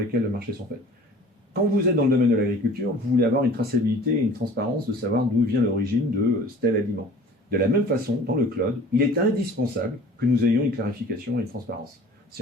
le marché sont faits. Quand vous êtes dans le domaine de l'agriculture, vous voulez avoir une traçabilité et une transparence de savoir d'où vient l'origine de tel aliment. De la même façon, dans le cloud, il est indispensable que nous ayons une clarification et une transparence. C'est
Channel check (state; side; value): normal; both; correlation 0.46